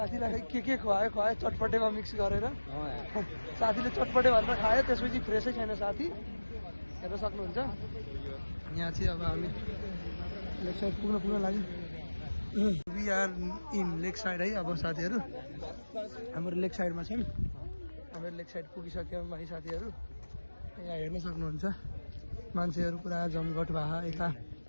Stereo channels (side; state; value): both; inverted; correlation -1.00